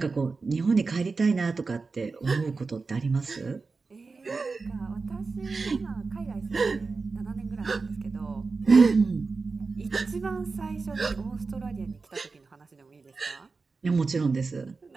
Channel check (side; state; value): left; quieter; 4.2 dB